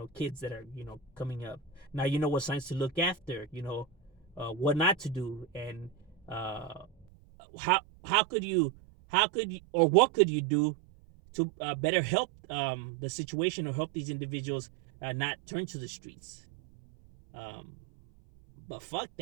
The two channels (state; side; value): drops out; left; at 7.1 s